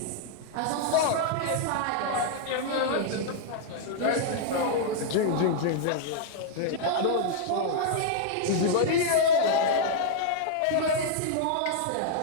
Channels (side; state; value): both; different; correlation -0.01